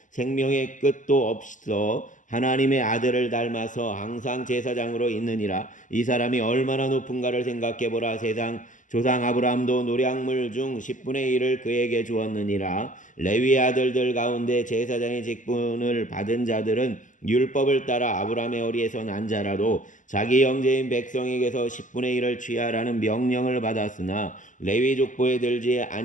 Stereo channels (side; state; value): right; late; 0.37 ms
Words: 생명의 끝도 없어 하나님의 아들을 닮아서 항상 제사장으로 있느니라. 이 사람이 얼마나 높은가를 생각해보라. 세상 조상 아브라함도 노량물 중 10분의 1을 그에게 주었느니라. 레위 아들들 가운데 제사장의 직분을 받은 자들은 율법을 따라 아브라함의 어리에서 난 자라도 자기 형제인 백성에게서 10분의 1을 취하라는 명령을 받았으나 레위 족보에 들지